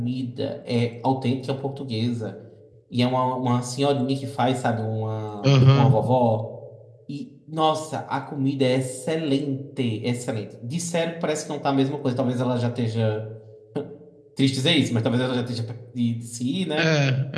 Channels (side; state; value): both; identical; correlation 1.00